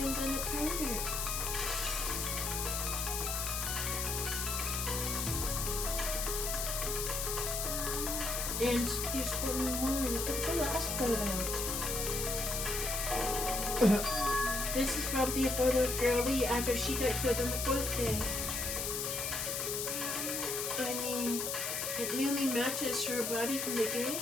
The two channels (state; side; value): noise; left; hiss, 1 dB below the sound